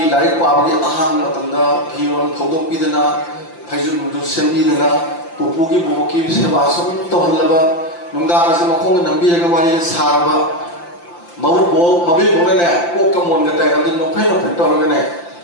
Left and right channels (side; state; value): right; late; 5.8 ms